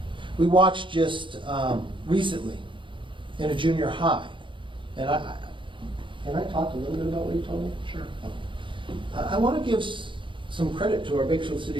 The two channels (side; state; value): left; late; 0.24 ms